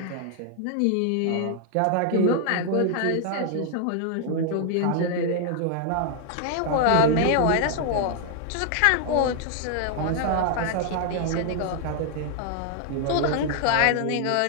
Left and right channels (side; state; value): both; different; correlation 0.00